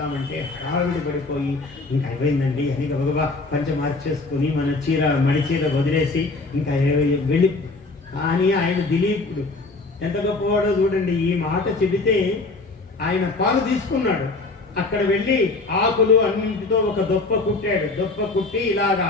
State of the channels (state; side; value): quieter; right; 3.5 dB